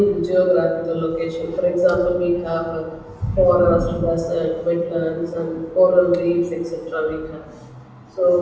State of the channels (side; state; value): both; identical; correlation 1.00